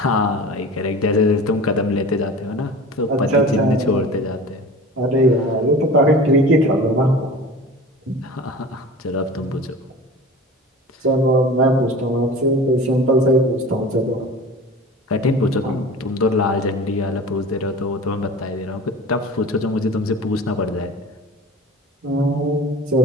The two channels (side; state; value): both; normal; correlation 0.37